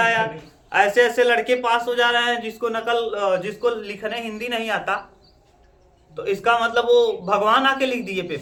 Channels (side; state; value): both; identical; correlation 1.00